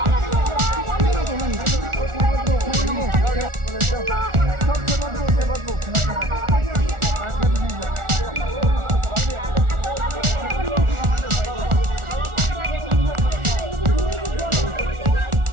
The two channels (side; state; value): left; late; 1.4 ms